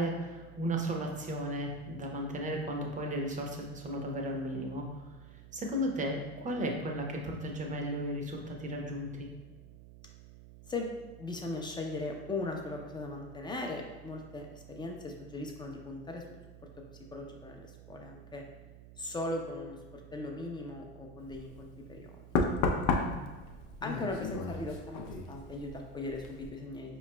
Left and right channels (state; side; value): noise; right; hum, 15 dB below the sound